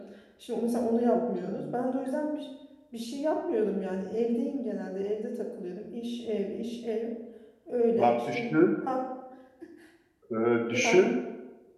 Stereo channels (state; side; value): identical; both; correlation 1.00